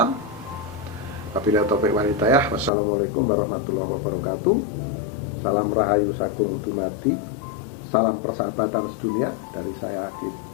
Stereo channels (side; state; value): right; drops out; at 2.7 s